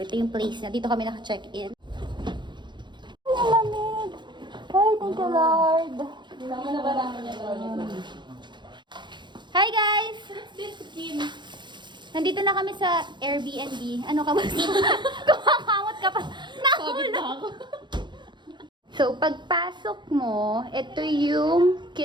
ito yung place na, dito kami naka-check-in. Ay, ang lamig! Ay, thank you Lord! Hi guys! Nandito na kami sa Airbnb. Ano ka ba? Kumakamot ka pa. Nahulog. So, pagpasok mo, ito yung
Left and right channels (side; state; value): left; late; 0.22 ms